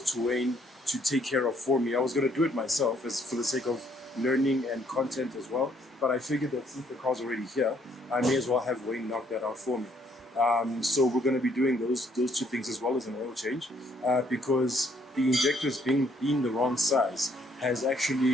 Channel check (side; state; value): both; normal; correlation 0.67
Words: to Wayne to take care of for me. I was going to do it myself as for the sake of learning and content as well, but I figured that since the car's already here, I may as well have Wayne knock that out for me. So we're going to be doing those two things as well as an oil change, because the injectors being the wrong size has